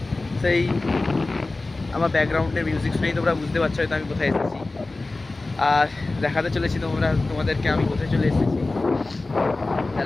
সেই আমার ব্যাকগ্রাউন্ডের মিউজিক শুনেই তোমরা বুঝতে পারছো হয়তো আমি কোথায় এসেছি। আর দেখাতে চলেছি তোমাদেরকে আমি কোথায় চলে এসেছি।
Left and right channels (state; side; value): quieter; right; 3.2 dB